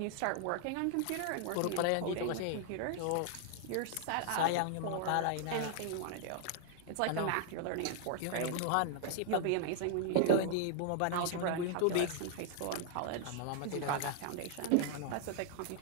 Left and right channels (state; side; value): different; both; correlation 0.00